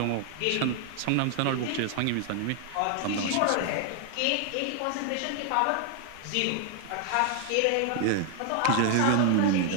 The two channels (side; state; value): both; different; correlation 0.00